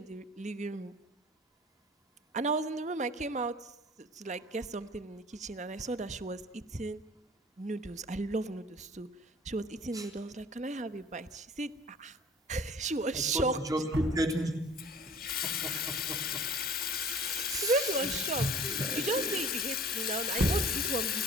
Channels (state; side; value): normal; both; correlation 0.46